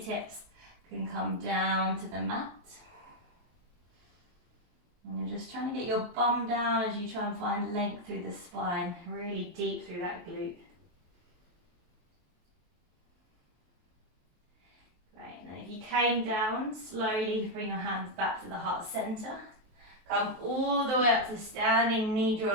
can come down to the mat. And you're just trying to get your bum down as you try and find length through the spine, really deep through that glute. Great, and then if you came down, slowly bring your hands back to the heart center. Come all the way up to standing, knee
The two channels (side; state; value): left; late; 23 ms